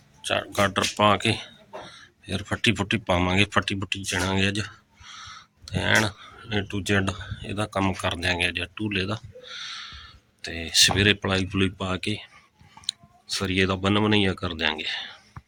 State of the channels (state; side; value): identical; both; correlation 1.00